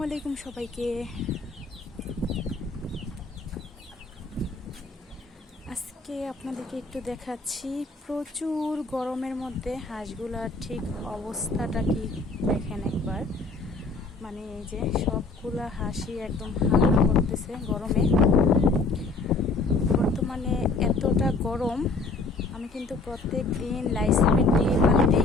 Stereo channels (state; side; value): quieter; right; 3.6 dB